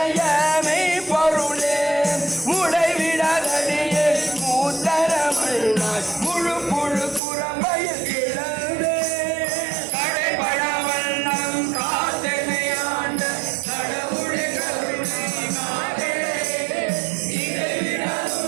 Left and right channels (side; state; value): left; drops out; at 7.2 s